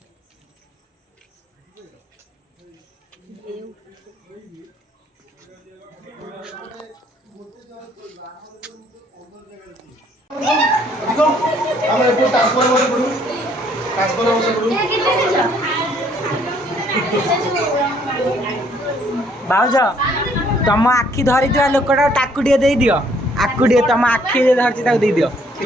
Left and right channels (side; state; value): both; normal; correlation 0.64